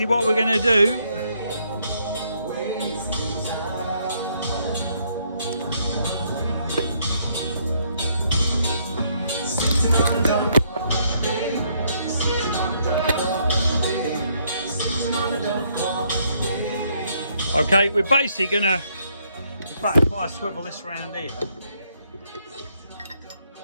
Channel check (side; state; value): both; inverted; correlation -0.71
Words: what we're going to do, okay, we're basically going to, in fact, if I swivel this around here,